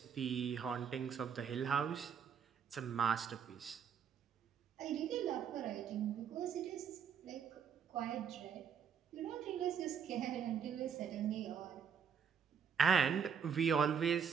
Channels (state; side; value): quieter; left; 7.2 dB